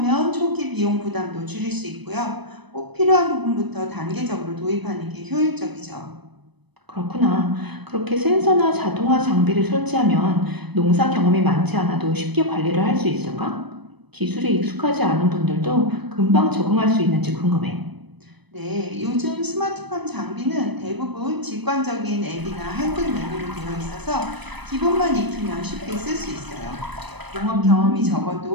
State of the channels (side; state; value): left; late; 0.99 ms